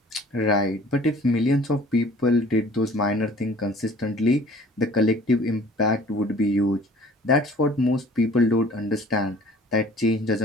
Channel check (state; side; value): normal; both; correlation 0.50